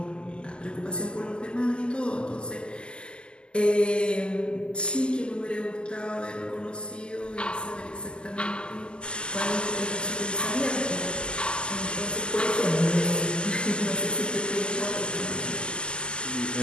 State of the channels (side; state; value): right; late; 0.049 ms